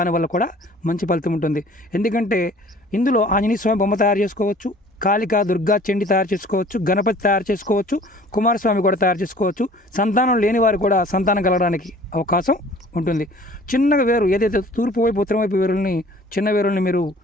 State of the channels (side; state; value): both; normal; correlation 0.51